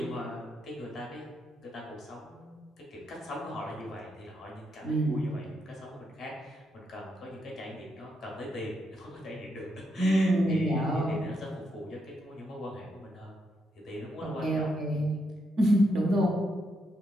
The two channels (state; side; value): normal; both; correlation 0.80